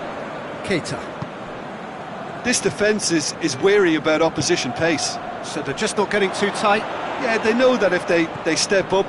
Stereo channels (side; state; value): both; identical; correlation 1.00